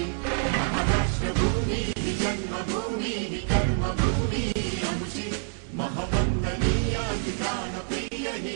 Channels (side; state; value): left; silent; 60 dB below the other